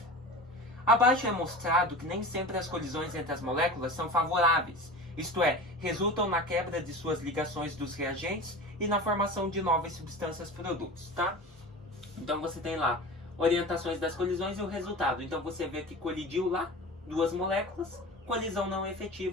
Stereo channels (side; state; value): both; normal; correlation 0.33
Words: Abaixo é mostrado que nem sempre as colisões entre as moléculas são favoráveis, isto é, resultam na quebra de suas ligações dos reagentes e na formação de novas substâncias produtos, tá? Então você tem lá orientações das colisões e o resultado. Então você vê que colidiu lá duas moléculas, colisão não